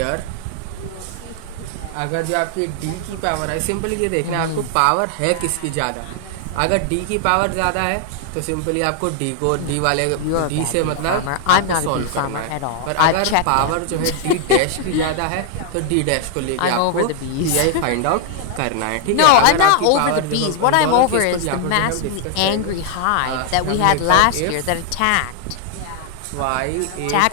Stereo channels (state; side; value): different; both; correlation 0.00